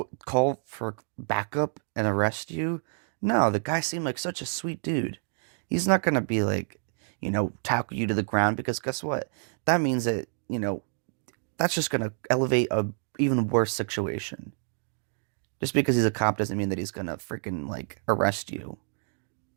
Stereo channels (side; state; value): left; silent; digital silence